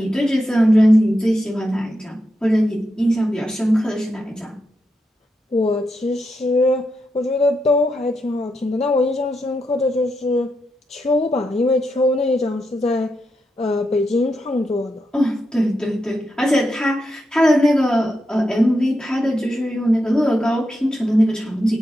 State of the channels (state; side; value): normal; both; correlation 0.85